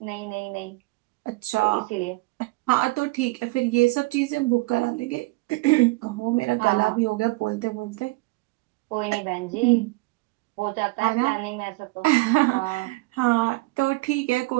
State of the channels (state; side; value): quieter; left; 23.2 dB